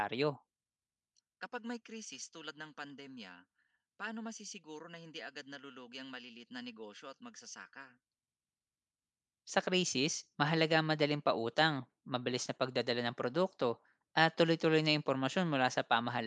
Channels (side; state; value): both; identical; correlation 1.00